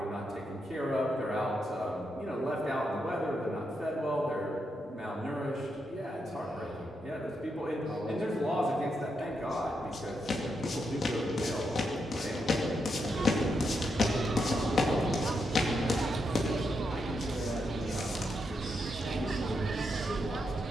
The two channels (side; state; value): both; normal; correlation 0.82